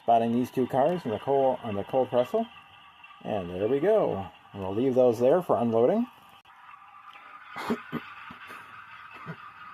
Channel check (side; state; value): both; identical; correlation 1.00